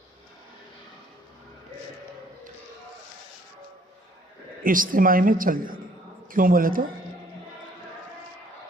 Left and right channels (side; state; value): both; normal; correlation 0.61